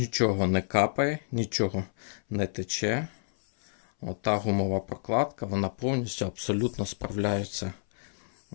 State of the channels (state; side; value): silent; right; 58 dB below the other